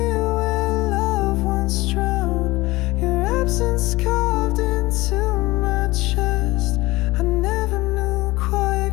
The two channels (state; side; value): quieter; right; 20.2 dB